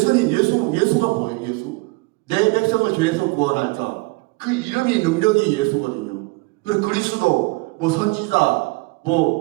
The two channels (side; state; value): left; quieter; 24.9 dB